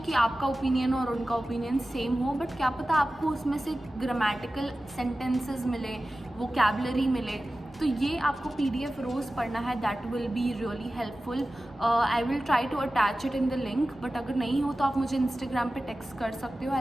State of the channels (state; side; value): normal; both; correlation 0.95